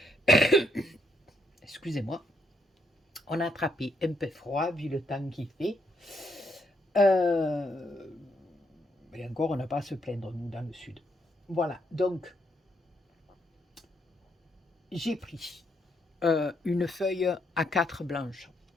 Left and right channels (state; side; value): normal; both; correlation 0.76